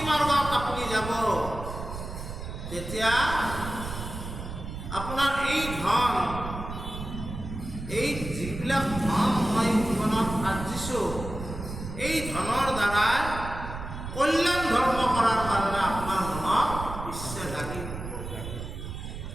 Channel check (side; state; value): right; noise; rumble, 8 dB below the sound